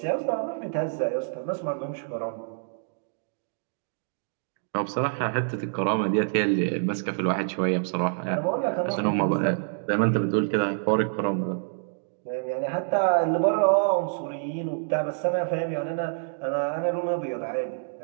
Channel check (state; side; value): silent; left; digital silence